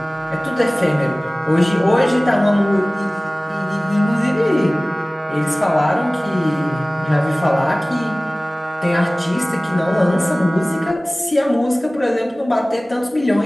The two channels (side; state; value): both; normal; correlation 0.98